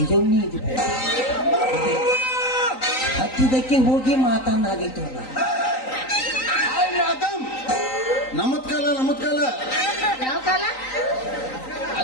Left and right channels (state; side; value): late; right; 3.9 ms